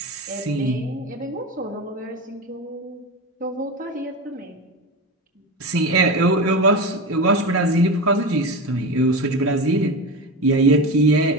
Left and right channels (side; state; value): both; normal; correlation 0.23